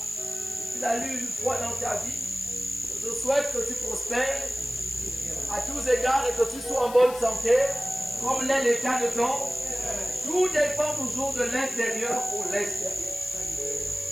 si tu l'as lu une fois dans ta vie, je souhaite que tu prospères à tous égards et que tu sois en bonne santé, comme l'est l'état de ton. Tout dépend toujours de l'intérieur pour l'extérieur.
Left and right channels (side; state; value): left; noise; hiss, 14 dB below the sound